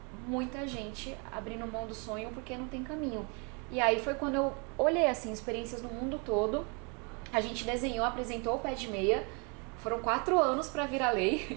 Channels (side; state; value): left; quieter; 33.8 dB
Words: muita gente abrindo mão do sonho porque não tem caminho. E aí, foi quando eu olhei, assim, experiências no mundo todo, a gente desenhou, apresentou o pé de meia, foram 4 anos para virar lei,